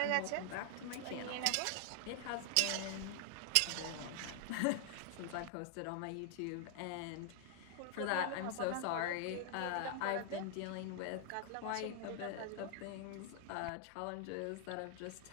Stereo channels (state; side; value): different; both; correlation 0.00